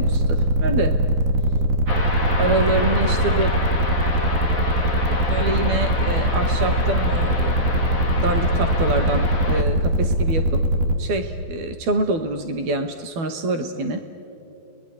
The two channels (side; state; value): left; late; 12 ms